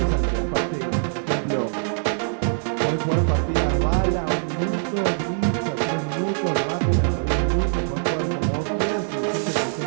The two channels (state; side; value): silent; left; digital silence